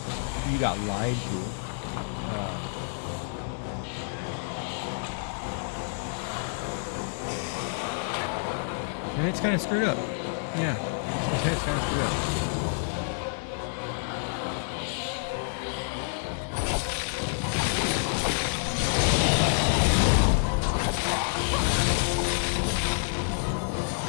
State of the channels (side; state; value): right; silent; digital silence